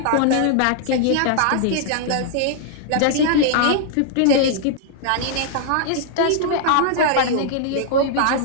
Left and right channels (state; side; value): different; both; correlation -0.01